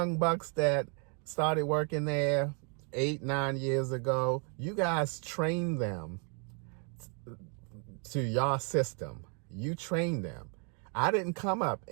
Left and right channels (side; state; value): left; quieter; 38.4 dB